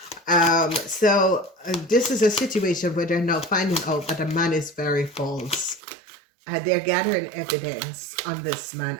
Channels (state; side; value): drops out; left; at 5.8 s